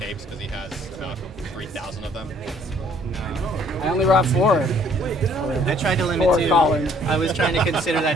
because he has about 3,000 of them. No. I only brought 4. I tried to limit 4 too. Colin. I was trying to consider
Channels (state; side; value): normal; both; correlation 0.61